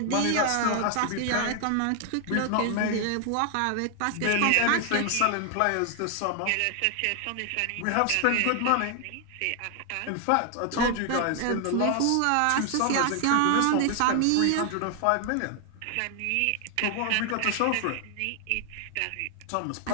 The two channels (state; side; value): different; both; correlation 0.00